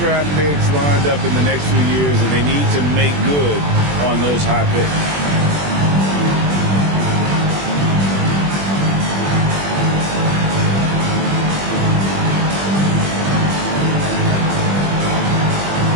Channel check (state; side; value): late; left; 21 ms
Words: picks lined up in the next few years, and they need to make good on those high picks.